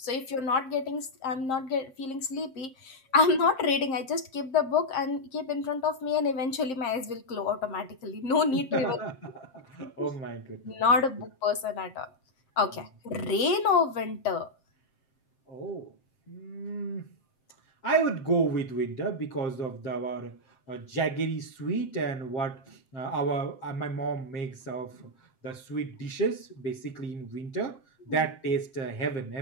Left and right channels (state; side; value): late; right; 7.6 ms